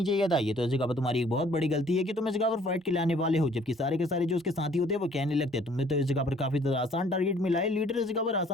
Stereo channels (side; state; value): both; normal; correlation 0.58